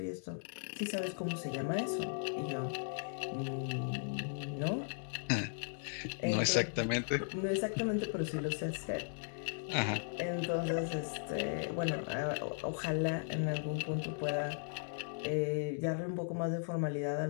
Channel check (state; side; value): silent; right; digital silence